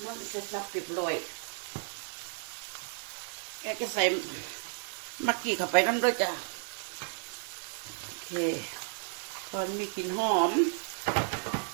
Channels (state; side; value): silent; left; 56 dB below the other